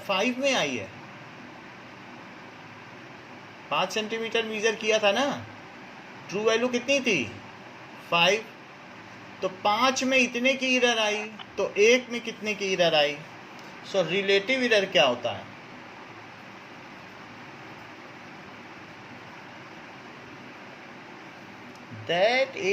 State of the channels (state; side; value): identical; both; correlation 1.00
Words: 5 में आई है? 5 सेंटीमीटर मीजर किया था ना, ट्रू वैल्यू कितनी थी? 5। तो 5 में इतने की एरर आई, तो 1 में कितने की एरर आई? सो रिलेटिव एरर क्या होता है? That